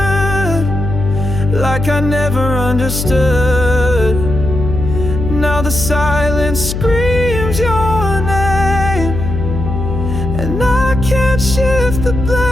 like I never understood. Now the silence screams your name, and I can't shift the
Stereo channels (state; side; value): noise; left; hum, 4 dB below the sound